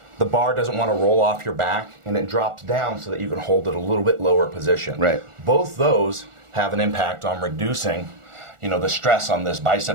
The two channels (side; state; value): left; late; 1.4 ms